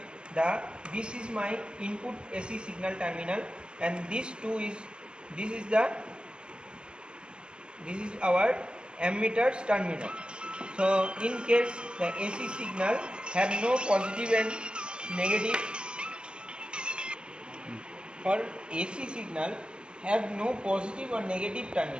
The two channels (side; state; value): left; late; 0.050 ms